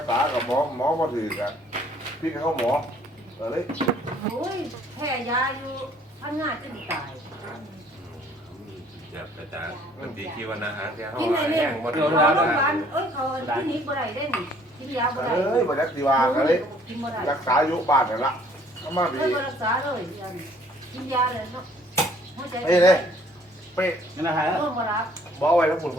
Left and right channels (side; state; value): both; normal; correlation 0.59